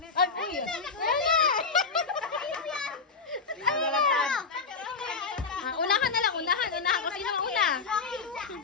Ay, Ano na? Unahan na lang, unahan. Unahan ko sino ang una.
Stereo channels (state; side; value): quieter; right; 4.8 dB